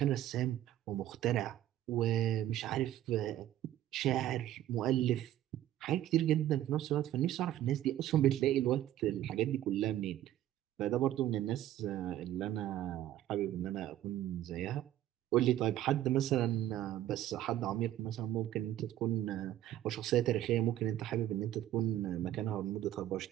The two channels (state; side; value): quieter; left; 12.8 dB